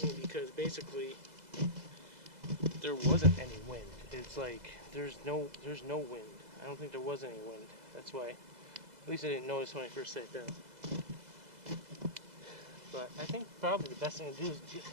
me because basically there wasn't any wind. It's like there's no wind. I don't think there was any wind. That's why, at least I didn't notice when I first sat down. But I think probably the best thing to do is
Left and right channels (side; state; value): left; late; 2.0 ms